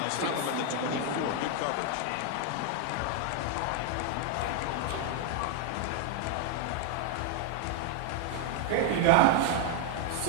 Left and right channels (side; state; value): both; different; correlation 0.00